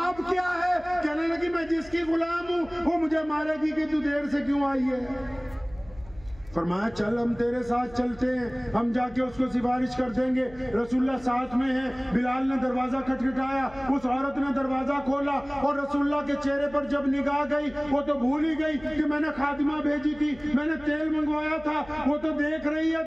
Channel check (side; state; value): left; noise; hum, 22 dB below the sound